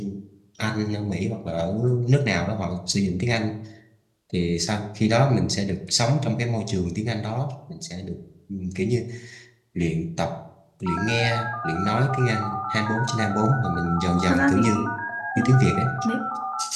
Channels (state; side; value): identical; both; correlation 1.00